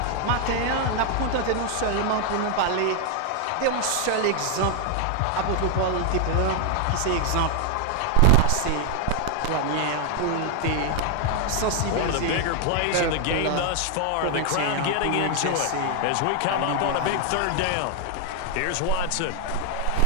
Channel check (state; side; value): different; both; correlation 0.01